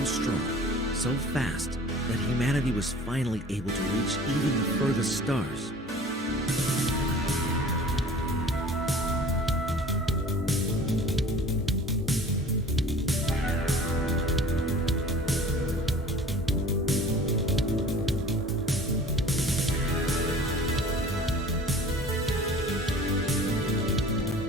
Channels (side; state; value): both; normal; correlation 0.44